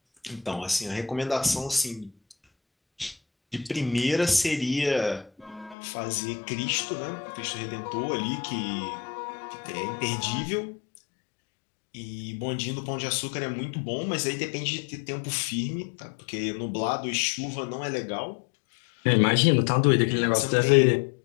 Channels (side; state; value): right; drops out; at 5.8 s